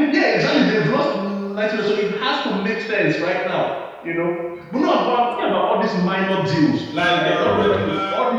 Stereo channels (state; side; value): identical; both; correlation 1.00